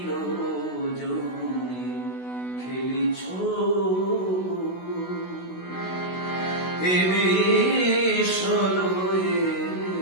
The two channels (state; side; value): late; right; 16 ms